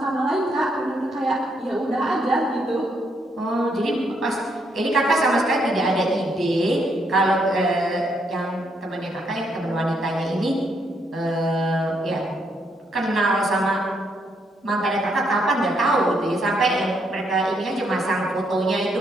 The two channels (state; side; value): normal; both; correlation 0.75